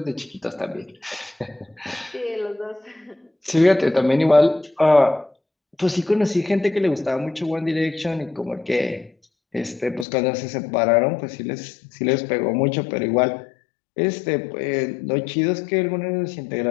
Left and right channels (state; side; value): drops out; right; at 10.1 s